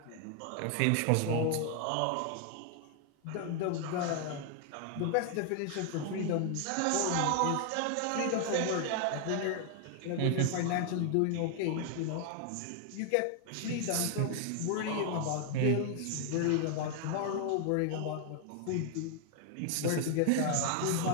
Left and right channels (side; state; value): both; different; correlation 0.00